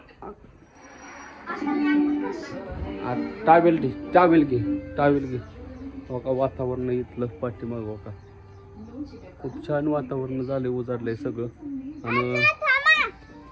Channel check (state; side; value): identical; both; correlation 1.00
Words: टावेल घे. हो का, वातावरण इथलं पाठीमाग हो का, खूप छान वातावरण झालंय, उजाडलंय सगळं. आणि